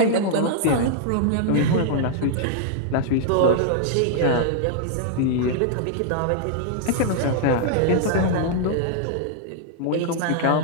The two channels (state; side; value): different; both; correlation -0.01